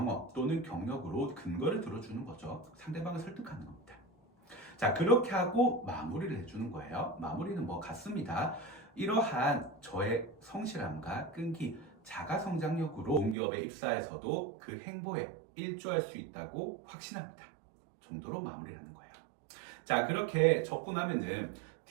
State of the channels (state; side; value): drops out; left; at 13.4 s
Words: 또는 경력으로 근거를 들어주는 거죠. 상대방을 설득하는 겁니다. 자, 그렇게 하고 마무리를 해주는 거예요. 마무리는 뭐 같습니다. 이러한 저의 성실함과 끈기, 자가 성장력으로 공기업에 입사해서도 그 행보에 일조할 수 있다고 확신합니다. 정도로 마무리를 하는 거예요. 자, 그렇게 적고 나면은